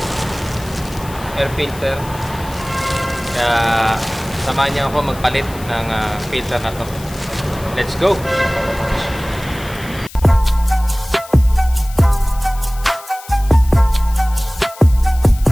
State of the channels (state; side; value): noise; left; hiss, 18 dB below the sound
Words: air filter. Kaya samahan niyo ako magpalit ng filter na to. Let's go!